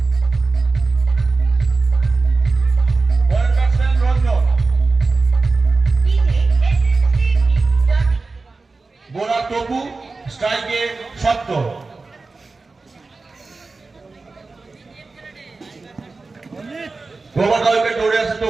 পরের ব্যাটসম্যান রঞ্জন, বোলার টপু, স্ট্রাইকে শক্ত। ওভার দ্য উইকেট দৌড়ে আসে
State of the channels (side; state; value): left; quieter; 3.8 dB